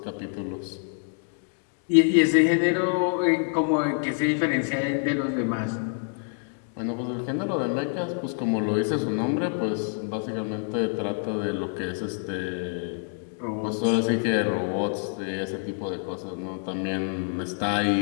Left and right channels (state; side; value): silent; right; 60 dB below the other